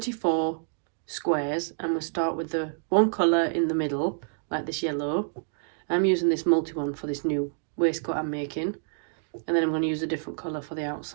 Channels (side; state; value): left; silent; digital silence